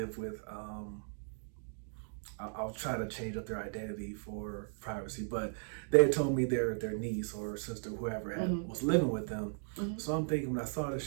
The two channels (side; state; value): left; silent; digital silence